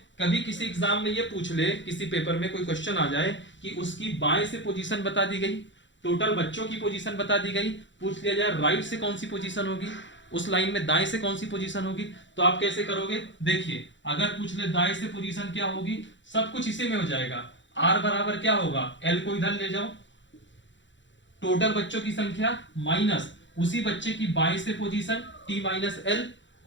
कभी किसी एग्जाम में ये पूछ ले, किसी पेपर में कोई क्वेश्चन आ जाए कि उसकी बाएं से पोजीशन बता दी गई, टोटल बच्चों की पोजीशन बता दी गई, पूछ लिया जाए राइट से कौन सी पोजीशन होगी, उस लाइन में दाएं से कौन सी पोजीशन होगी, तो आप कैसे करोगे। देखिए अगर पूछ ले दाएं से पोजीशन क्या होगी, सब कुछ इसी में हो जाएगा। आर बराबर क्या होगा, एल को इधर ले जाओ, टोटल बच्चों की संख्या माइनस उसी बच्चे की बाएं से पोजीशन टी माइनस एल,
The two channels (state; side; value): late; right; 0.54 ms